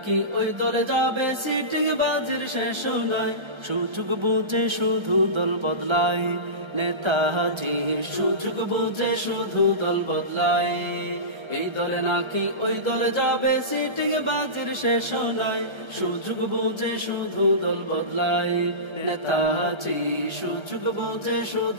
ওই দলে যাবে সিটিং বাজির শেষ নয়। সুযোগ বুঝে শুধু দল বদলায় নেতাজি, সুযোগ বুঝে শুধু দল বদলায়। এই দলে নাকি ওই দলে যাবে সিটিং বাজির শেষ নয়। সুযোগ বুঝে শুধু দল বদলায় নেতাজি, সুযোগ বুঝে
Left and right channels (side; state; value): left; late; 1.3 ms